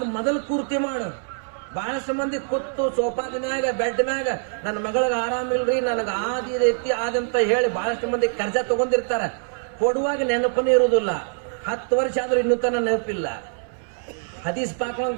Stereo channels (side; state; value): left; silent; 63 dB below the other